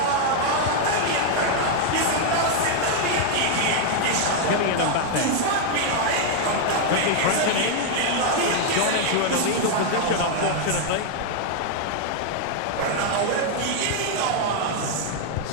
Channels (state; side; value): different; both; correlation 0.00